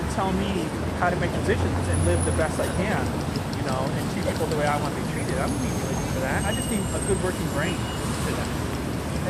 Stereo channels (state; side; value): identical; both; correlation 1.00